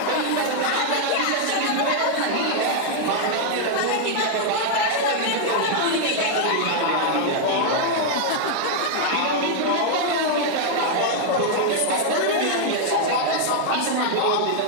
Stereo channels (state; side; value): different; both; correlation 0.00